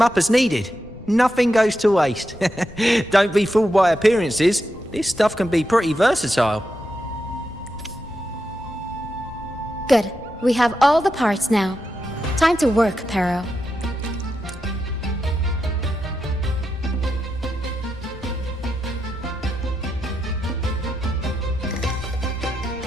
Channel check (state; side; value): noise; left; rumble, 21 dB below the sound